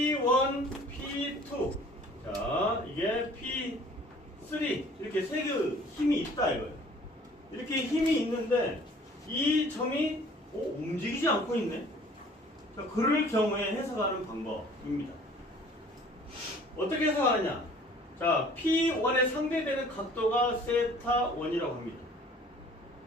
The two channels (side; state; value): both; normal; correlation 0.52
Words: P2. 자, 이게 P3. 이렇게 세 개의 힘이 있다 이거예요. 이렇게 힘이 있는데 이 점이 움직이지 않고 있네. 자, 그럴 경우에 해석하는 방법입니다. 어떻게 해석하느냐? 자, P1에 상대되는 각도가 세타1이라고 합니다.